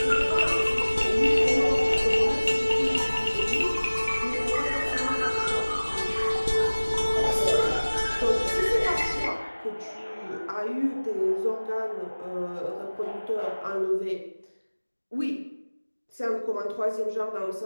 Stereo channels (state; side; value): inverted; both; correlation -1.00